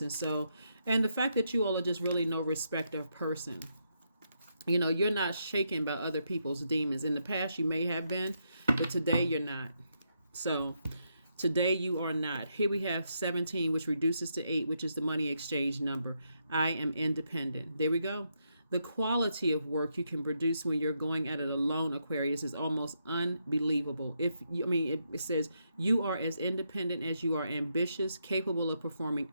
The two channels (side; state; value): both; inverted; correlation -0.80